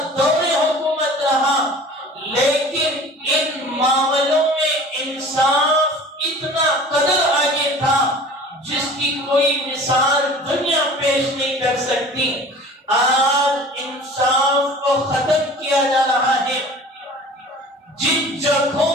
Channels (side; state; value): both; normal; correlation 0.43